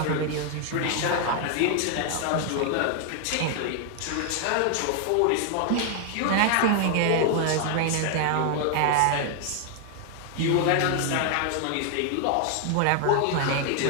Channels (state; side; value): different; both; correlation 0.00